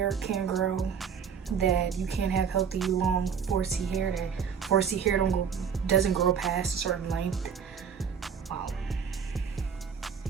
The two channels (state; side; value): quieter; left; 7.0 dB